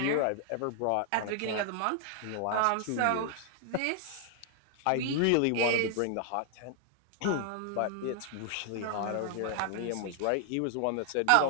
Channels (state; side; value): different; both; correlation 0.00